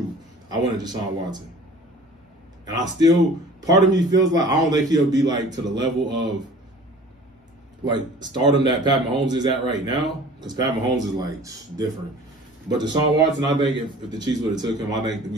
I wanted Deshaun Watson. And I still, part of me feels like I don't think he'll be like to the level of like stardom that Pat Mahomes is at right now, because Pat Mahomes is like different. But Deshaun Watson, I think if the Chiefs would have took him, I think that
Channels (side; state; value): both; normal; correlation 0.45